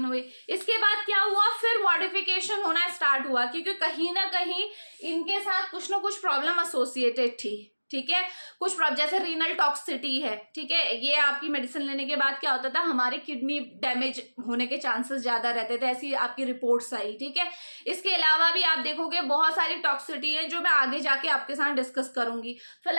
हुए। इसके बाद क्या हुआ, फिर मॉडिफिकेशन होना स्टार्ट हुआ, क्योंकि कहीं ना कहीं इनके साथ कुछ ना कुछ प्रॉब्लम एसोसिएटेड थी, ठीक है। कुछ प्रॉब्लम जैसे रीनल टॉक्सिसिटी है, ठीक है, ये आपकी मेडिसिन लेने के बाद क्या होता था, हमारे किडनी डैमेज होने के चांसेस ज्यादा रहते थे, ऐसी आपकी रिपोर्ट्स आई, ठीक है। इसके अलावा भी आप देखोगे बहुत सारी टॉक्सिसिटी है जो मैं आगे जाके आपके साथ डिस्कस करूंगी।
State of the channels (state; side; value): inverted; both; correlation -1.00